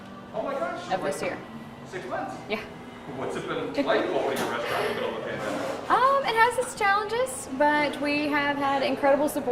Oh my gosh. of this year. 6 months? Yeah. What's it been like opening a restaurant in the middle of the pandemic? It has its challenges, but we have had incredible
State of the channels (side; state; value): both; identical; correlation 1.00